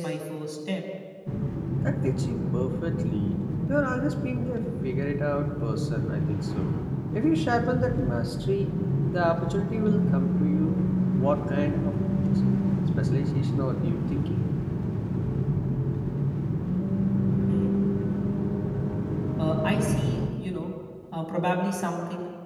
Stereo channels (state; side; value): identical; both; correlation 1.00